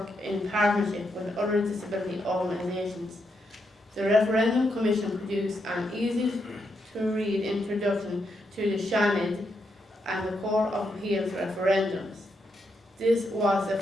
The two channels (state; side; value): normal; both; correlation 0.81